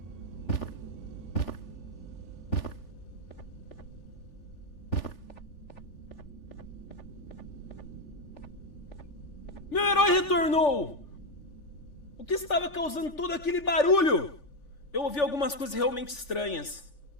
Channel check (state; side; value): late; right; 3.4 ms